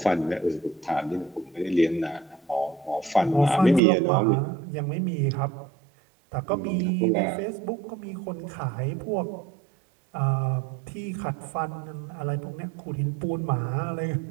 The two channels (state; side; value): drops out; left; at 3.8 s